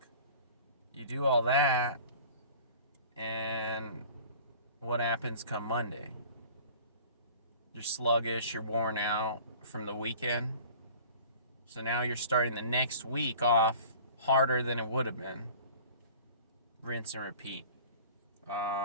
you do all that, and what happens come Monday? You're sluggish, you're worn out from the weekend. So now you're starting the next week off harder than it would have been. Rinse and repeat.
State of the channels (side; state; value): both; inverted; correlation -0.45